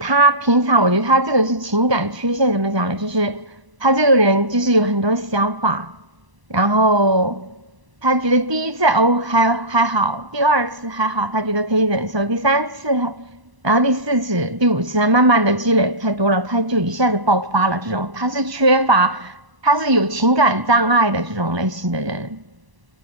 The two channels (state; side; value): late; left; 1.0 ms